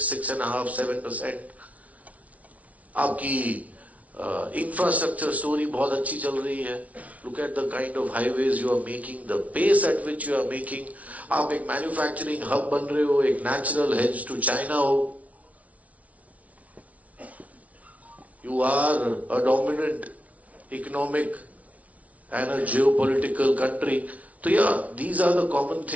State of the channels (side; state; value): left; late; 0.068 ms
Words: 7%। आपकी इंफ्रास्ट्रक्चर स्टोरी बहुत अच्छी चल रही है। Look at the kind of highways you are making, the pace at which you are making. आप एक मैन्युफैक्चरिंग हब बन रहे हो, एक नेचुरल हेज टू चाइना हो। You are a dominant economic and a geopolitical country. So yeah, these are the common